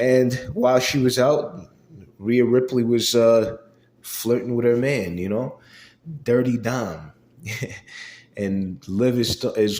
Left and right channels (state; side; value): identical; both; correlation 1.00